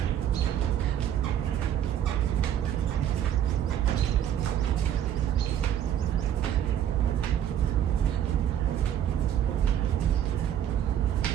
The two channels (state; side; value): quieter; left; 10.3 dB